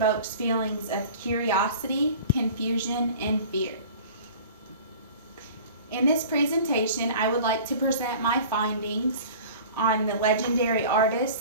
feelings of curiosity, confusion, and fear. In this presentation, I would like to present my findings on the legendary artist,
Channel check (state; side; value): inverted; both; correlation -0.42